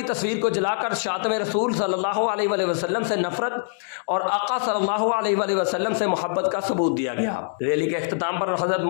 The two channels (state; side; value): silent; right; digital silence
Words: تصویر کو جلا کر شاتم رسول صلی اللہ علیہ وآلہ وسلم سے نفرت اور آقا صلی اللہ علیہ وآلہ وسلم سے محبت کا ثبوت دیا گیا۔ ریلی کے اختتام پر حضرت